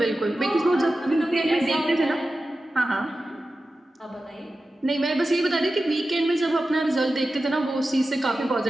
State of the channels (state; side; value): normal; both; correlation 0.93